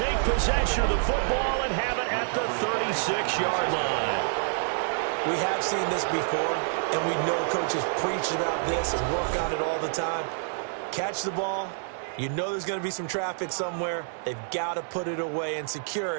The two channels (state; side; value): silent; left; 60 dB below the other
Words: possession of the football and have it at the 36-yard line. We have seen this before, and we know coaches preach about this and work on it all the time. Catch the ball. You know there's going to be some traffic somewhere. They've got to put it away and secure